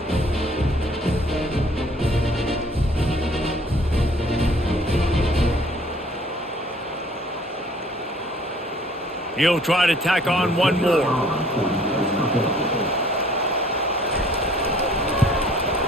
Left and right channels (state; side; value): normal; both; correlation 0.56